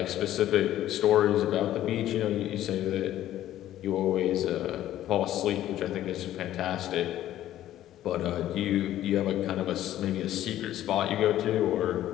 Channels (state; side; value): quieter; right; 12.9 dB